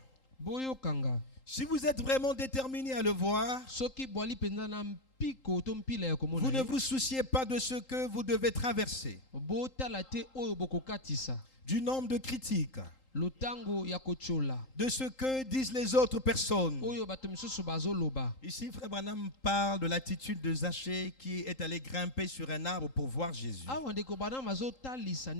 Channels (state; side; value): late; right; 3.8 ms